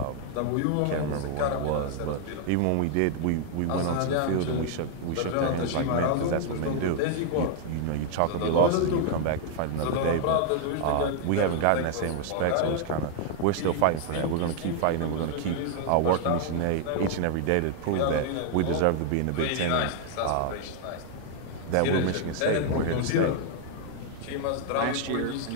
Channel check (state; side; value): different; both; correlation 0.00